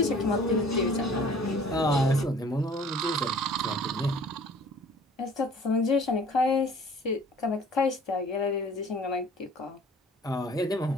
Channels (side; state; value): both; normal; correlation 0.50